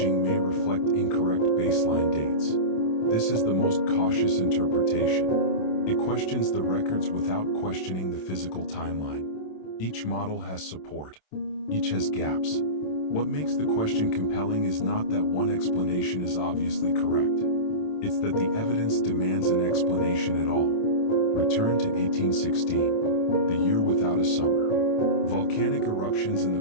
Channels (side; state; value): right; late; 27 ms